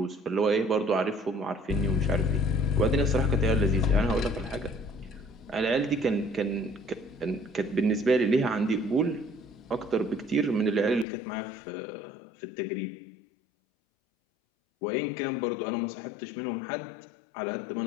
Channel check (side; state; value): right; drops out; at 11.1 s